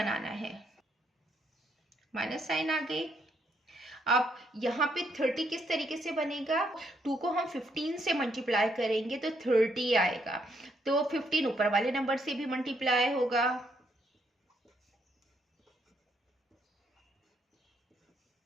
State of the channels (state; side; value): normal; both; correlation 0.74